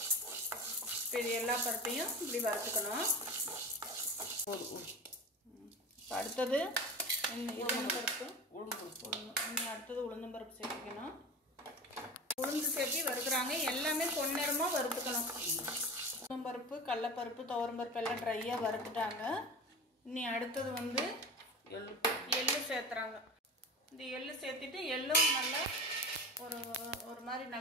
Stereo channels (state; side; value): normal; both; correlation 0.31